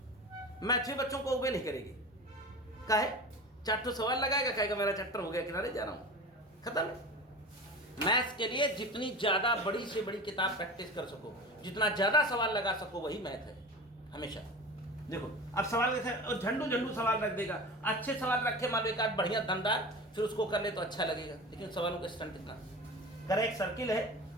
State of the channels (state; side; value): normal; both; correlation 0.32